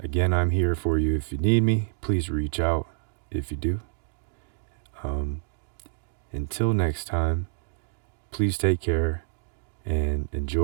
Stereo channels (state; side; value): silent; left; digital silence